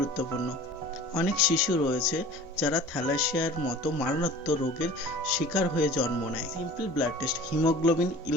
অনেক শিশু রয়েছে যারা থ্যালাসেমিয়ার মতো মারাত্মক রোগের শিকার হয়ে জন্ম নেয়। Simple blood test: haemoglobin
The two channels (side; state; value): both; normal; correlation 0.43